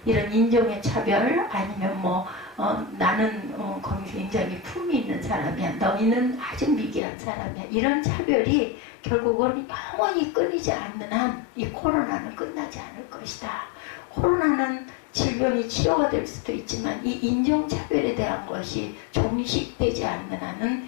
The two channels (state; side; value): drops out; right; at 7.0 s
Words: 이런 인종의 차별, 아니면 나는 굉장히 품이 있는 사람이야. 너희는 아주 미개한 사람이야. 이런 차별이 결국은 영원히 끊이지 않는 한 이 코로나는 끝나지 않을 것이다. 코로나는 질병이 치료가 될 수도 있지만 이 인종차별에 대한 것이 종식되지 않는 한은